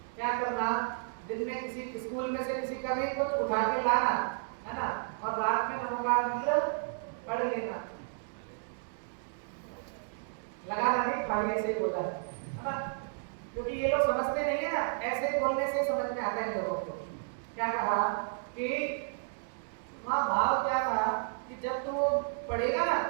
क्या करना, दिन में किसी स्कूल में से किसी का भी कुछ उठा के लाना है ना, और रात में नमोकार मंत्र पढ़ लेना, लगाना नहीं, खाली ऐसे ही बोला है ना, क्योंकि ये लोग समझते नहीं है ना, ऐसे बोलने से समझ में आता है लोगों को। क्या कहा कि वहाँ भाव क्या कहा कि जब तू वो पढ़ेगा ना,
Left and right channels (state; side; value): silent; left; digital silence